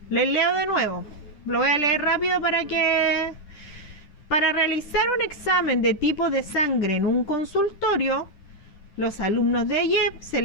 Les leo de nuevo. Lo voy a leer rápido para realizar un examen de tipo de sangre en un consultorio, los alumnos de AYEP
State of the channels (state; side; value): late; right; 10 ms